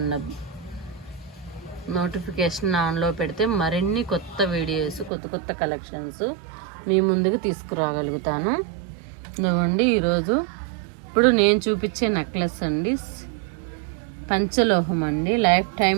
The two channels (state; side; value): drops out; left; at 5.1 s